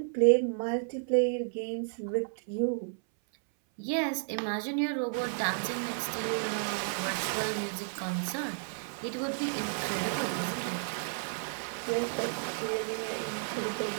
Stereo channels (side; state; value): left; silent; 56 dB below the other